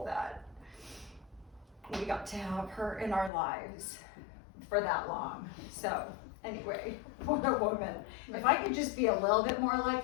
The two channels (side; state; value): right; drops out; at 3.3 s